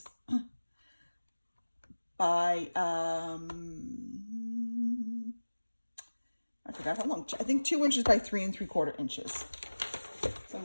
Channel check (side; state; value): both; inverted; correlation -1.00